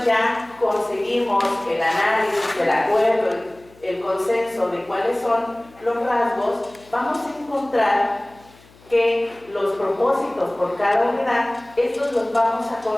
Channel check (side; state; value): left; noise; hum, 27 dB below the sound